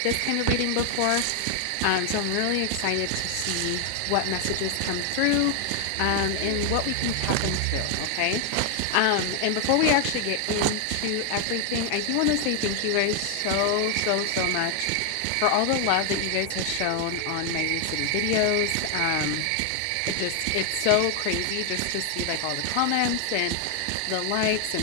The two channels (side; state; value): both; different; correlation 0.00